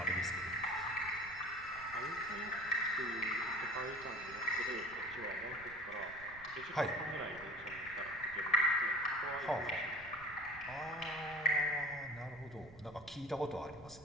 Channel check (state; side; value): noise; right; rumble, 20 dB below the sound